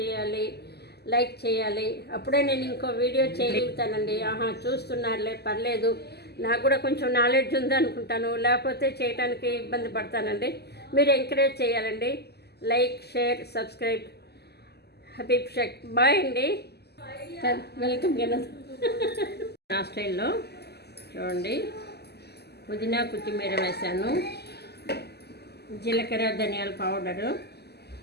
లైక్ చేయాలి. అప్పుడే నేను ఇంకో వీడియో చేయగలుగుతానండి. చూస్తున్నారులే పర్లేదు, నాకు కూడా కొంచెం నాలెడ్జ్ ఉంది అనుకుంటాను, లేకపోతే చేయడానికి ఇబ్బంది పడతానండి. మీరు ఎంకరేజ్ చేయాలండి. Like, share, subscribe. Habib Sheikh. Bye అండి. వెల్కమ్ కదా. నా స్టైల్లో చూడండి, పుదీనా కొత్తిమీర వేసాను, జీలకర్ర ధనియాల పౌడరు,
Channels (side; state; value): right; late; 0.47 ms